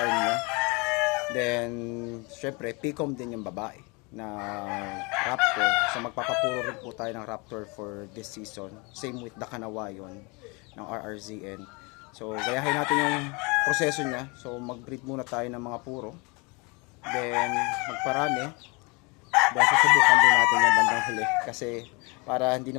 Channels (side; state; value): right; quieter; 28.8 dB